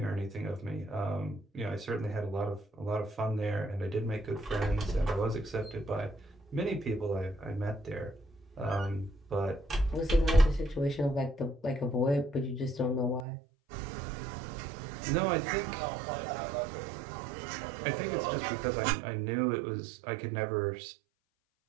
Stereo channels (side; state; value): left; drops out; at 13.2 s